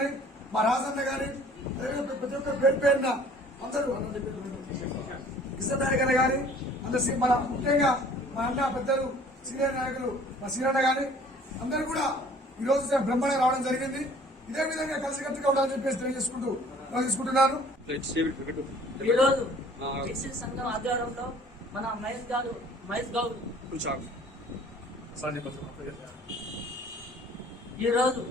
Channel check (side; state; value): both; normal; correlation 0.52